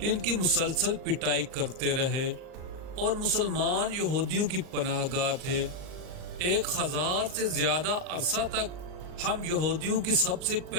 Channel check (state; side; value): late; left; 39 ms